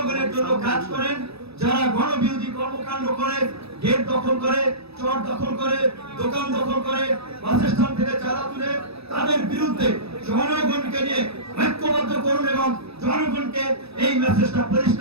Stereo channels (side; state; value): left; late; 0.78 ms